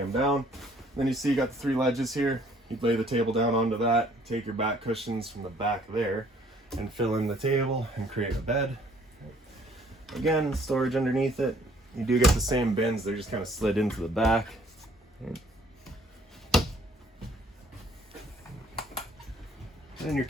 down. And then you see you got the 3 ledges here. You'd lay the table down onto that, take your back cushions from the back there and fill in the table and create a bed. Again, storage underneath it. You do get the same bins, they're just kind of slid into the back. In your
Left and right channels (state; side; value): normal; both; correlation 0.60